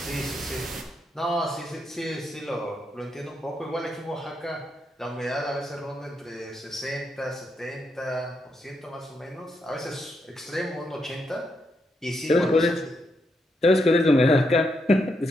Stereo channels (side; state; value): both; normal; correlation 0.80